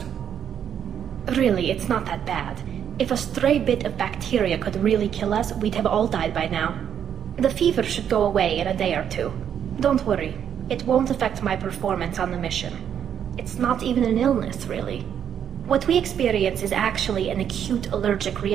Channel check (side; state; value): left; quieter; 8.7 dB